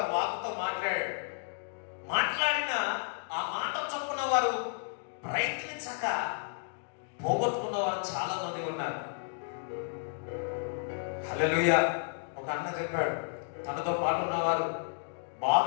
వాకుతో మాట్లాడాడు. మాట్లాడిన ఆ మాట చొప్పున వారు ప్రయత్నించక పోగొట్టుకున్న వారు చాలా మంది ఉన్నారు. హల్లెలూయా. ఒక అన్న చెప్పాడు, తనతో పాటు ఉన్నవారు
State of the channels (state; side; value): silent; right; digital silence